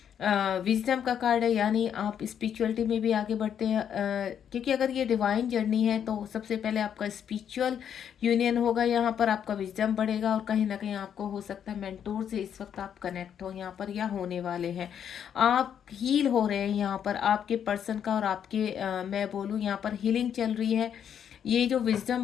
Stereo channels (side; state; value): right; quieter; 8.7 dB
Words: विजडम का कार्ड है, यानी आप स्पिरिचुअलिटी में भी आगे बढ़ते हैं, क्योंकि अगर ये डिवाइन जर्नी है तो सबसे पहले आपका स्पिरिचुअल यूनियन होगा, यहाँ पर आपका विजडम बढ़ेगा, और कहीं ना कहीं आपको हो सकता है मेंटोर से इस वक्त आप कनेक्ट हो यहाँ पर, या होने वाले हैं। आप हील हो रहे हैं यहाँ पर, आपके पर्सन का और आपके मैं बोलूँ यहाँ पर हीलिंग चल रही है। ये जो